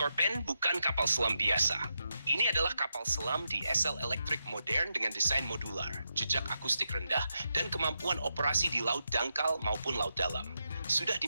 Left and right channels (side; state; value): both; inverted; correlation -0.85